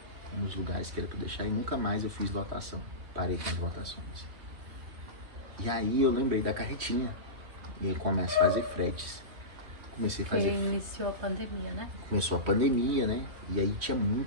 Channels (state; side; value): late; left; 3.1 ms